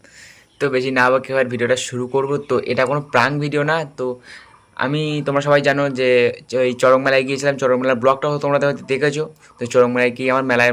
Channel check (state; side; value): identical; both; correlation 1.00